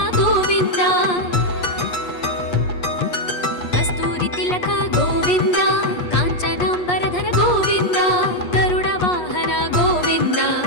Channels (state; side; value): late; right; 8.3 ms